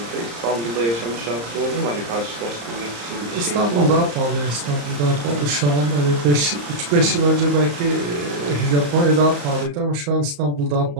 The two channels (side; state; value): left; late; 34 ms